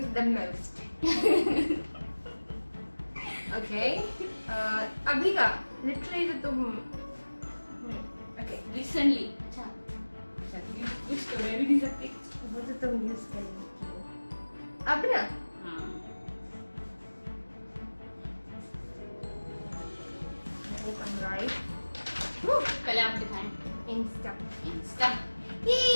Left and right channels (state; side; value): inverted; both; correlation -1.00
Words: the most? Okay अभी का लिटरली तो तुम ओके रिसेंटली अच्छा अच्छा कुछ तो मैं भी नहीं सकती। वो तो तुम यूज कर रही हो अब ना। हाँ राइट, पहले आप दिखाएं। इंस्टा। इंस्टा। ये